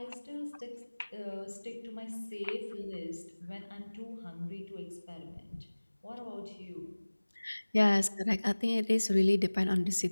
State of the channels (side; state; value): both; inverted; correlation -1.00